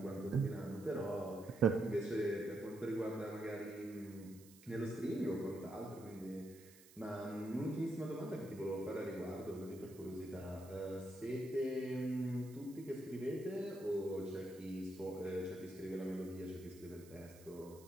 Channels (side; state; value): right; noise; hiss, 21 dB below the sound